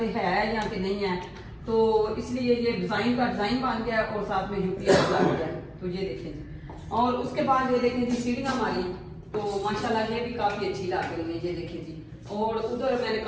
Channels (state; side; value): identical; both; correlation 1.00